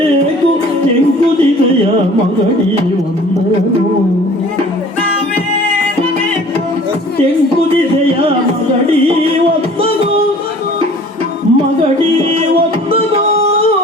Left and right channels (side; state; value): both; normal; correlation 0.49